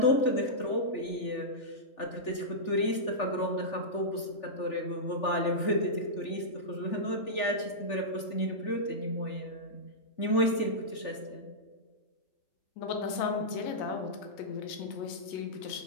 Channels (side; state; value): right; late; 3.4 ms